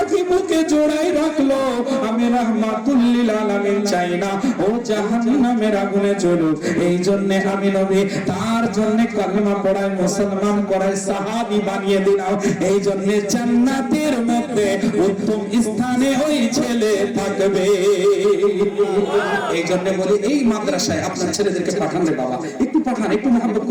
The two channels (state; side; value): identical; both; correlation 1.00